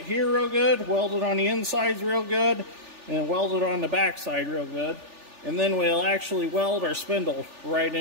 here real good, weld it on the insides real good, and weld it on the back side real good. And then we'll actually weld our spindle right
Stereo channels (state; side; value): late; left; 3.4 ms